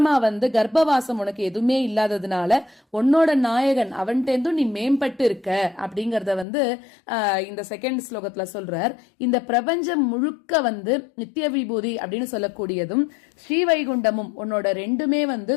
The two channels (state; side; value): drops out; right; at 6.5 s